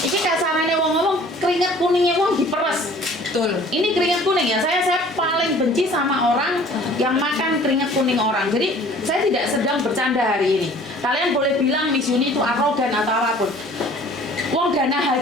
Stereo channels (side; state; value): both; normal; correlation 0.51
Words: ini kasarannya wong ngomong keringat kuningnya wong diperes. Betul. Ini keringat kuning ya. Saya paling benci sama orang yang makan keringat kuning orang. Jadi saya tidak sedang bercanda hari ini. Kalian boleh bilang Miss Yuni itu arogan atau apapun. Wong dana